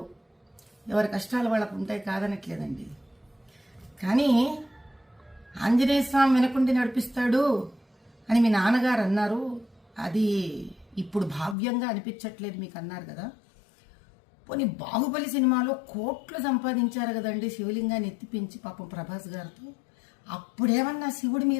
ఎవరి కష్టాలు వాళ్ళకు ఉంటాయి, కాదనట్లేదండి. కానీ ఆంజనేయ స్వామి వెనకుండి నడిపిస్తాడు అని మీ నాన్నగారు అన్నారు. అది ఇప్పుడు భావ్యంగా అనిపించట్లేదు మీకు అన్నారు కదా. పోనీ బాహుబలి సినిమాలో కోట్లు సంపాదించారు కదండి శివలింగాన్ని ఎత్తిపించి పాపం ప్రభాస్ గారితో. అప్పుడేమన్నా శివుడి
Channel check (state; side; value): drops out; right; at 11.6 s